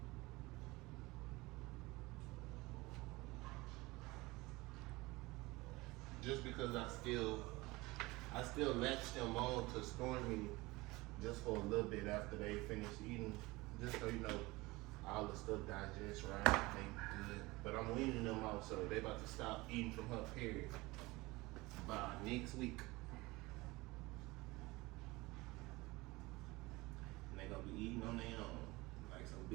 Just because I still latch them on to store me just for a little bit after they finish eating, just so you know all the stuff digests right, they good. But I'm weaning them out, so they about to stop eating from her period by next week. And they gonna be eating on their own, like some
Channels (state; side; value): quieter; left; 21.8 dB